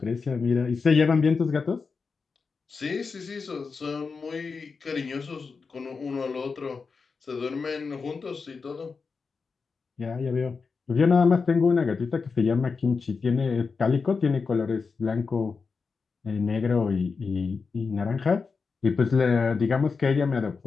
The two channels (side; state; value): right; quieter; 4.9 dB